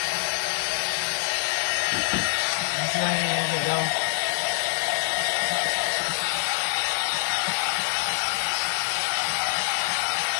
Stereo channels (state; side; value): silent; right; 57 dB below the other